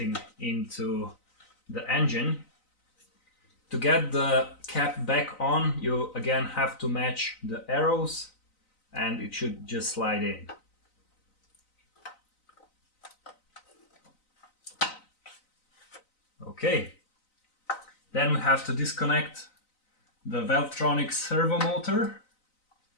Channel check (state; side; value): late; right; 3.9 ms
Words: into the engine. To get the cap back on, you again have to match the arrows, and it should just slide in. Okay, then we have to disconnect the Valvetronic servo motor.